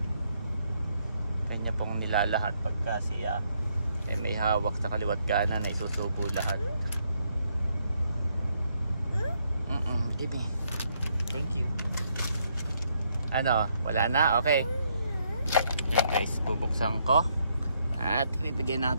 Kanya pong nilalahat pagka siya may hawak sa kaliwat kanan na isusubo lahat. Give me. Thank you. Ano? Wala na? Okay. Yan guys, bubuksan ko. At ibibigay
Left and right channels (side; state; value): both; inverted; correlation -0.74